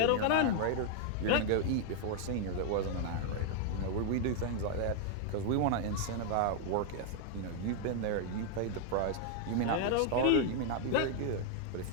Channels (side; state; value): both; different; correlation 0.00